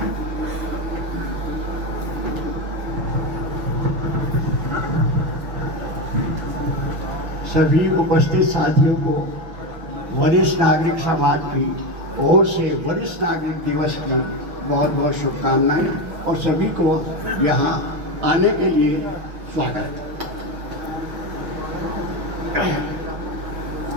सभी उपस्थित साथियों को वरिष्ठ नागरिक समाज की ओर से वरिष्ठ नागरिक दिवस की बहुत बहुत शुभकामनाएं और सभी को यहाँ आने के लिए स्वागत।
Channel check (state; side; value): late; left; 6.4 ms